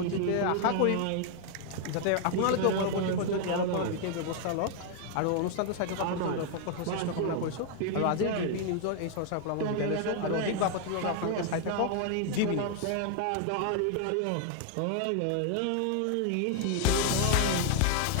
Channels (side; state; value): both; different; correlation 0.00